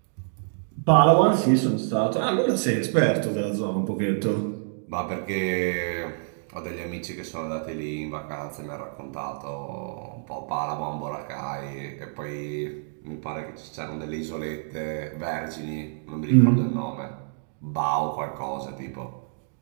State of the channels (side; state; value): left; silent; digital silence